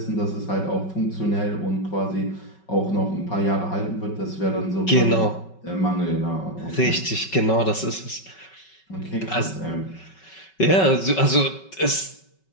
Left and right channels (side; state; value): right; late; 5.3 ms